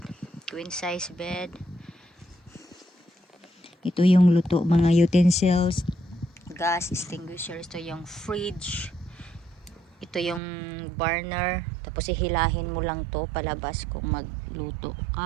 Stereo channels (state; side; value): drops out; left; at 10.4 s